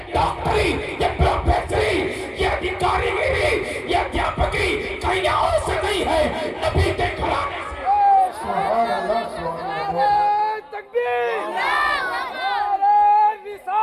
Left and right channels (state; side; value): identical; both; correlation 1.00